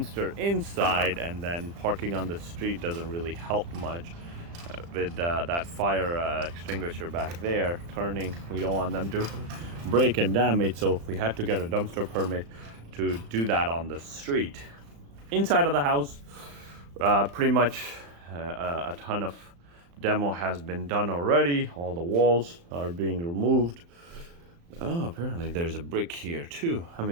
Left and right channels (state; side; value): late; left; 35 ms